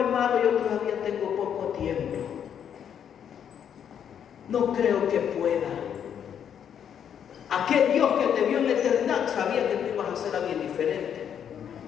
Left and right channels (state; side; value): quieter; right; 8.6 dB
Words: yo todavía tengo poco tiempo. No creo que pueda. Aquel Dios que te vio en la eternidad sabía que tú ibas a hacer algo diferente.